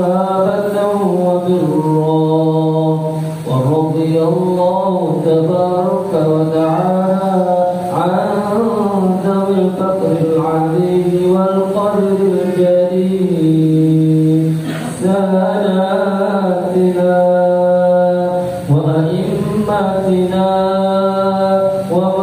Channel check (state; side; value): identical; both; correlation 1.00